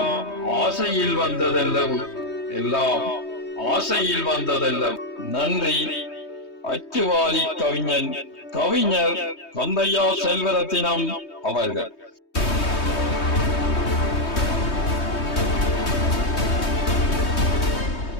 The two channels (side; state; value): right; late; 3.2 ms